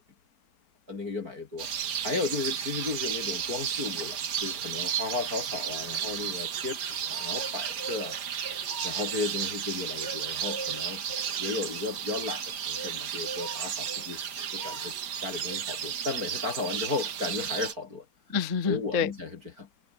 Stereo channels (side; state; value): left; late; 4.9 ms